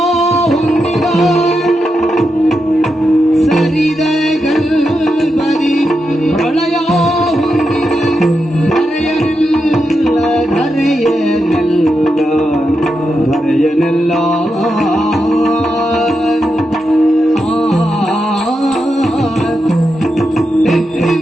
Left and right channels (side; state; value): both; normal; correlation 0.86